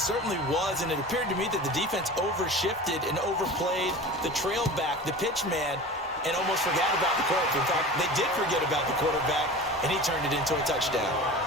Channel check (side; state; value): both; normal; correlation 0.35